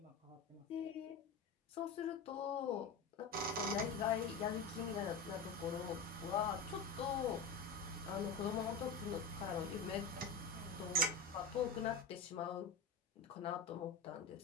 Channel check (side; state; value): right; quieter; 4.4 dB